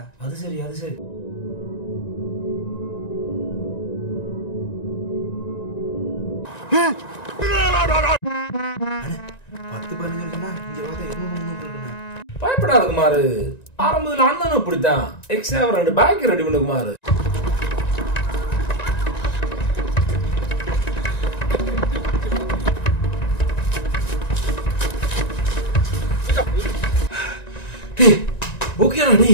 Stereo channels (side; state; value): right; late; 1.9 ms